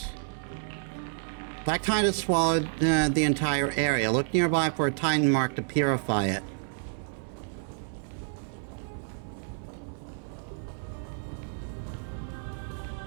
Black tide has swallowed the entire area. Look nearby for a Titan mark to purify it.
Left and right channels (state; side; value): silent; left; 58 dB below the other